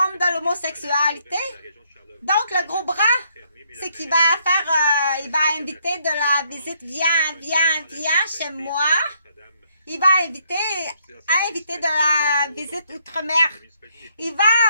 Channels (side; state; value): both; inverted; correlation -0.71